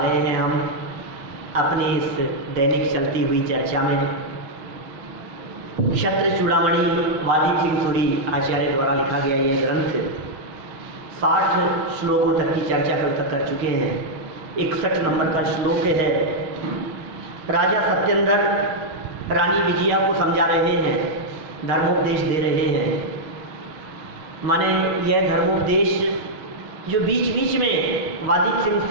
हैं हम अपनी इस दैनिक चलती हुई चर्चा में। क्षत्र चूड़ामणि वादीप सिंह सूरी आचार्य द्वारा लिखा गया यह ग्रंथ 60 श्लोकों तक की चर्चा कल तक कर चुके हैं। 61 नंबर का श्लोक है। राजा सत्येंद्र रानी विजया को समझा रहे हैं, धर्मोपदेश दे रहे हैं। माने यह धर्मोपदेश जो बीच बीच में वादीप सिंह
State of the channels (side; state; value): left; late; 6.3 ms